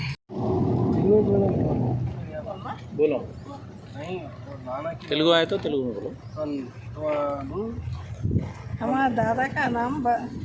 తెలుగు అయితే తెలుగు మా దాదా కా నామ్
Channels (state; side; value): identical; both; correlation 1.00